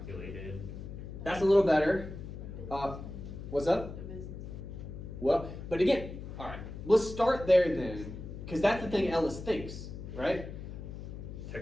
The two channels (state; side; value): noise; left; hum, 10 dB below the sound